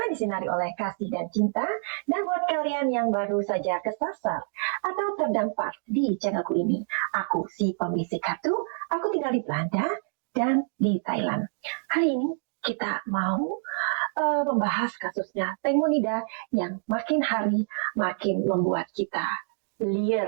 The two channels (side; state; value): left; silent; digital silence